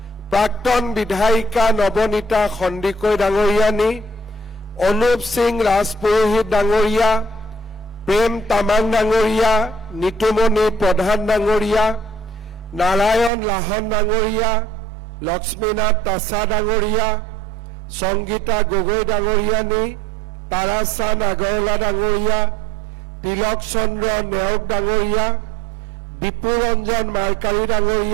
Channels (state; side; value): drops out; left; at 13.3 s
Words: প্ৰাক্তন বিধায়িকা নৱনীতা সন্দিকৈ ডাঙৰীয়ানী অনুপ সিং ৰাজপুৰোহিত ডাঙৰীয়া প্ৰেম তামাং ডাঙৰীয়া নিতুমণি প্ৰধান ডাঙৰীয়া নাৰায়ণ লাহন ডাঙৰীয়া লক্ষ্মীনাথ তাছা ডাঙৰীয়া সংগীতা গগৈ ডাঙৰীয়ানী তাৰাচান্দ আগৰৱালা ডাঙৰীয়া তিলক চন্দ্ৰ নেওগ ডাঙৰীয়া বিপুৰঞ্জন মাৰ্কাৰী